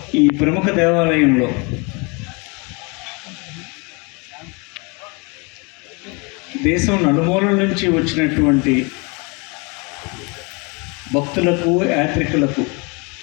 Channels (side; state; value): right; quieter; 30.4 dB